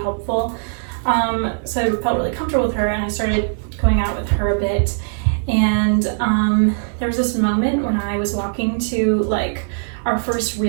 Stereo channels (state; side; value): silent; left; digital silence